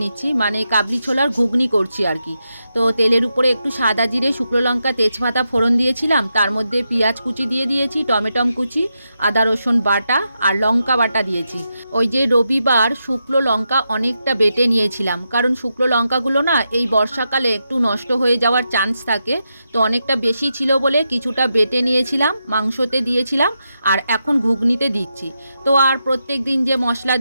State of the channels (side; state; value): both; inverted; correlation -0.86